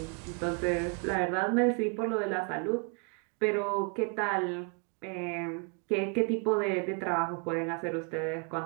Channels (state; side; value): quieter; left; 34.2 dB